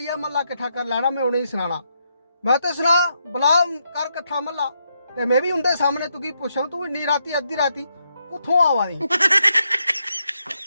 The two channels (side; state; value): both; inverted; correlation -0.80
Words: महला किट्ठा कर लैना, मैं उन्हें सुनाना। मैं तो सुना बुला कर कट्ठा महला ते मैं भी उनके सामने तुगी पुछां तू इन्नी राती अद्धी राती कुत्थों आवा दी?